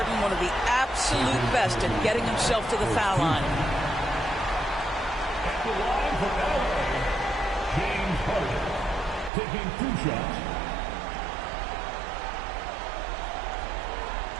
one of the absolute best at getting himself to the foul line. James Harden taking 2 shots.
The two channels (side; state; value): left; drops out; at 9.3 s